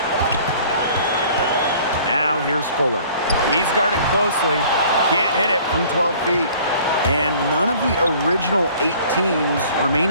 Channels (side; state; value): both; inverted; correlation -0.52